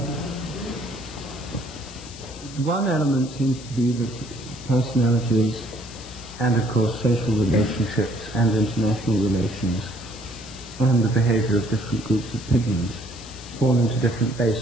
One element seems to be that personalities and, of course, social relationships and international relations and the behavior of different groups of pigeons fall into different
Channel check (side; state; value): left; noise; hiss, 16 dB below the sound